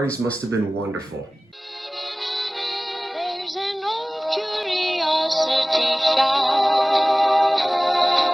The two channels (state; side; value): normal; both; correlation 0.98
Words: must have been wonderful. There's an old curiosity shop.